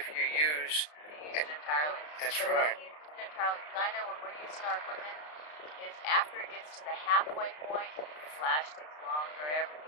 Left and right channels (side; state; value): right; late; 33 ms